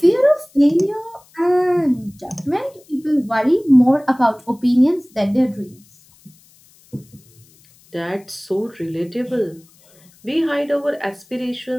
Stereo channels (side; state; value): left; noise; hiss, 29 dB below the sound